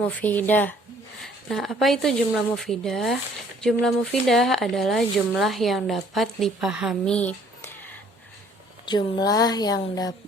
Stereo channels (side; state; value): both; normal; correlation 0.59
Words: Nah, apa itu jumlah mufidah? Jumlah mufidah adalah jumlah yang dapat dipahami. Jumlah yang